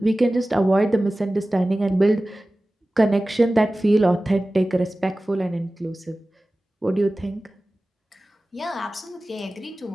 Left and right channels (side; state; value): both; normal; correlation 0.97